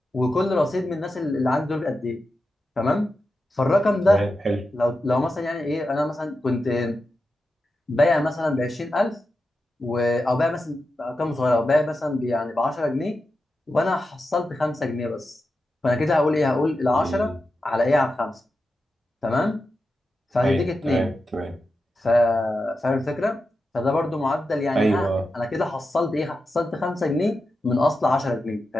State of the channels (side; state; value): both; normal; correlation 0.90